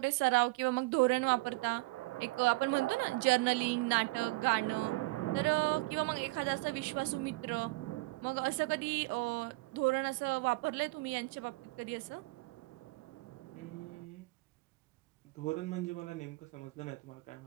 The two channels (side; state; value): left; quieter; 23.8 dB